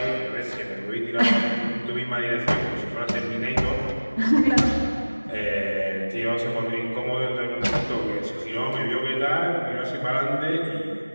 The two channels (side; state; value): both; inverted; correlation -1.00